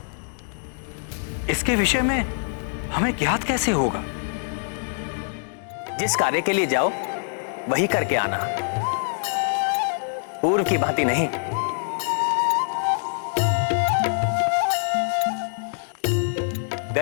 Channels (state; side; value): silent; right; digital silence